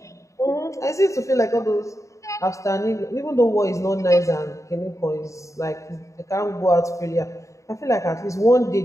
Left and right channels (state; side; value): late; right; 0.15 ms